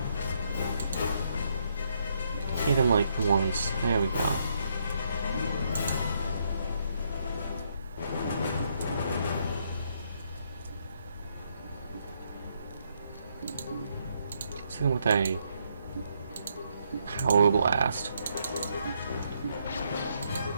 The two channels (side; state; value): both; inverted; correlation -0.75